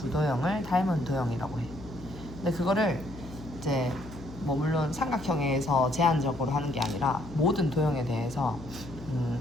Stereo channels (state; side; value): noise; left; hum, 15 dB below the sound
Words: 도형을 닮은 도형이라고 해. 근데 그거를 이제 뭐 물론 삼각형에서 제한적으로 하는 게 아니라 모든 도형에 대해서